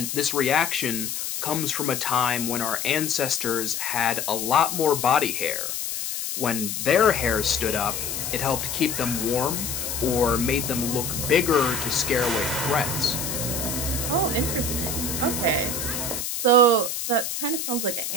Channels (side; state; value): left; noise; hiss, 4 dB below the sound